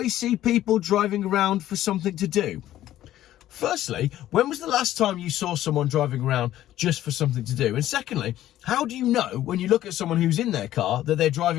see people driving around for something to do. Firstly, when was the last time you saw someone driving around just for something to do? And secondly, how do you know when you look at someone who's in their car that they're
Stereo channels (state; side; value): quieter; right; 13.3 dB